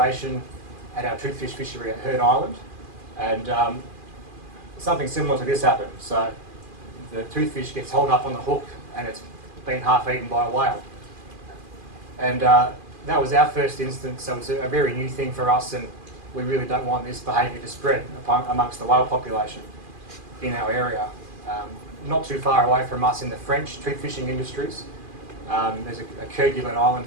at our toothfish fishery at Heard Island. And something similar to this happened. So the toothfish gets hauled up on the hook and it's been half eaten by a whale. And that was our first instance, so it's a very new thing for us, and we really don't want this behaviour to spread amongst the whale population in our area. Not too far away from us in the French toothfishing industries, there's a Kerguelen Island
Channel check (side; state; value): left; late; 2.4 ms